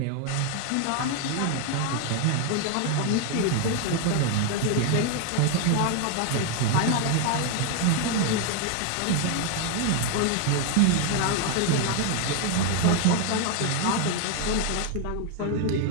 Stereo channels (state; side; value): different; both; correlation 0.00